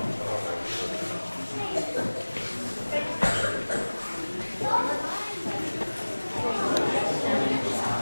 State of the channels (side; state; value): both; inverted; correlation -1.00